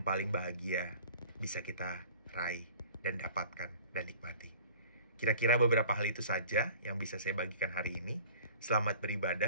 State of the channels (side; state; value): both; inverted; correlation -0.47